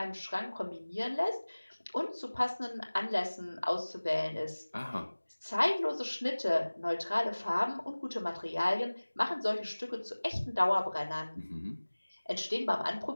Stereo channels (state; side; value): inverted; both; correlation -1.00